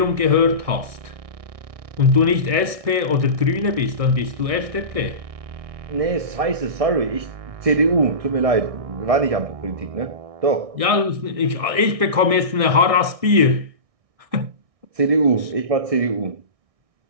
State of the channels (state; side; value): late; left; 1.6 ms